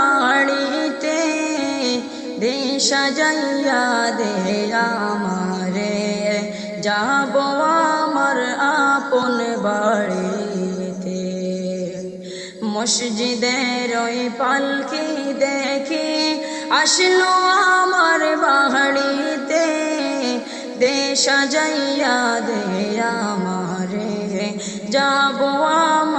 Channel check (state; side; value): identical; both; correlation 1.00